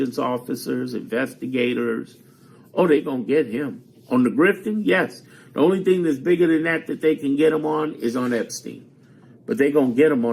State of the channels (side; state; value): both; identical; correlation 1.00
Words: officers, investigators. Oh, they're going to get him. On the grifting, yes. The only thing that's bigger than that they can get him on is on Epstein. But they're going to get him